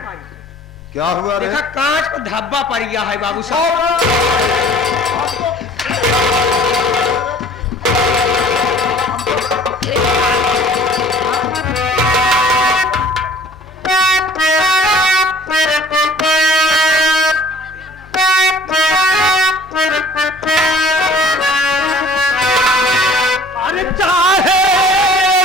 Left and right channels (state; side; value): normal; both; correlation 0.50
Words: क्या हुआ रे? देखा कांच को धब्बा पड़ गया है बाबू साहब।